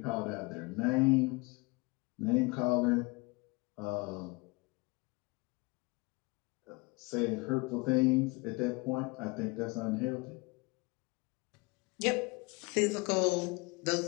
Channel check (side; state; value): right; quieter; 26.7 dB